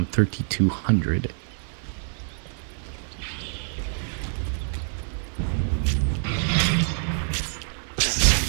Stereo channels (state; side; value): silent; left; 61 dB below the other